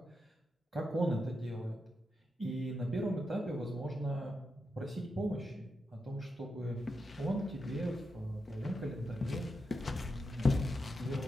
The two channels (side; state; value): both; normal; correlation 0.86